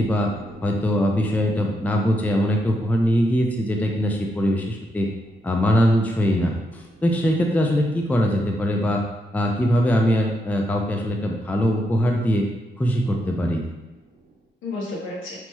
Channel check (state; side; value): normal; both; correlation 0.81